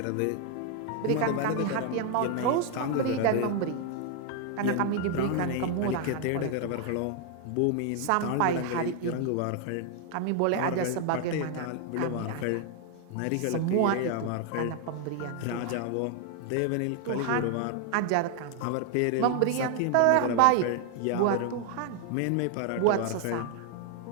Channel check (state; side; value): different; both; correlation 0.00